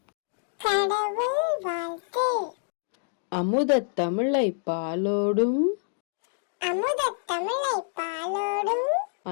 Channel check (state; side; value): silent; right; digital silence